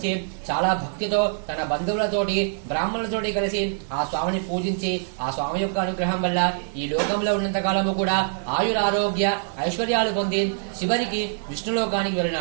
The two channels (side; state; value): left; silent; digital silence